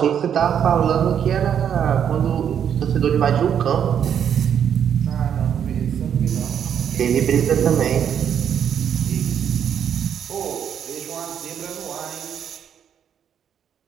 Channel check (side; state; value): left; quieter; 8.6 dB